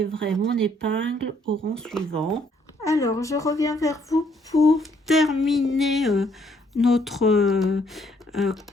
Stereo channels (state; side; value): normal; both; correlation 0.68